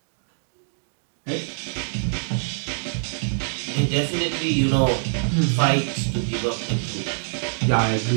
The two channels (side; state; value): left; silent; digital silence